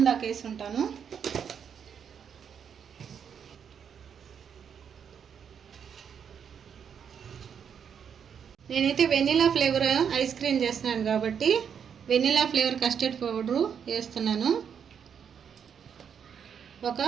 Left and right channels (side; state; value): left; quieter; 7.6 dB